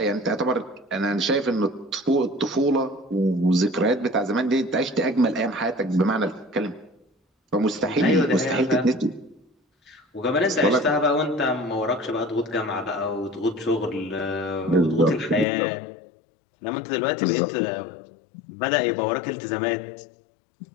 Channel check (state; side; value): drops out; right; at 15.5 s